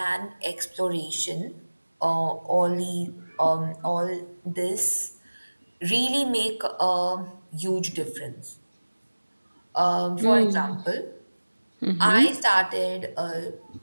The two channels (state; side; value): inverted; both; correlation -1.00